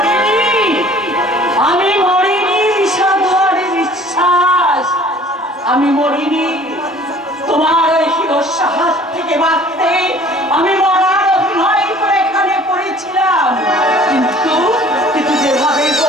আমি মরিনি সাধুর বিশ্বাস আমি মরিনি তোমার ওই হিরস্য হাত থেকে বাঁচতে আমি মরার অভিনয় করে এখানে পড়েছিলাম কিন্তু কিন্তু যেভাবে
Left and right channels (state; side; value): normal; both; correlation 0.51